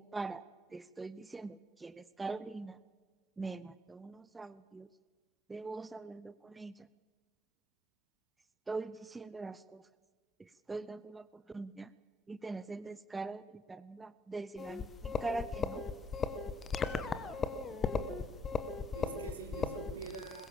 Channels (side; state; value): both; normal; correlation 0.71